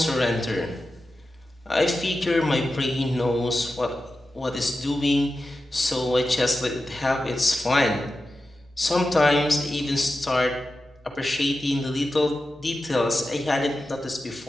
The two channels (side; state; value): both; normal; correlation 0.92